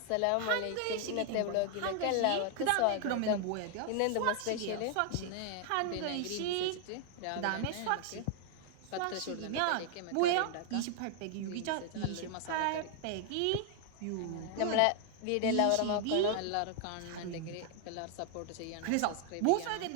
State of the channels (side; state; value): both; different; correlation 0.00